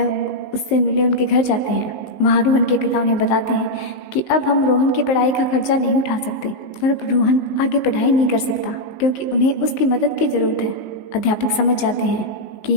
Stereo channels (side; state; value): right; late; 19 ms